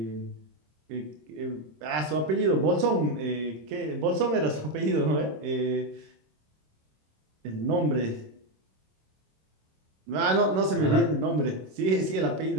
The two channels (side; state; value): left; late; 26 ms